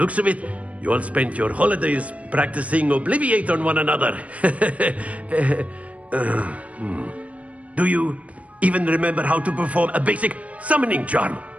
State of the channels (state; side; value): late; left; 0.066 ms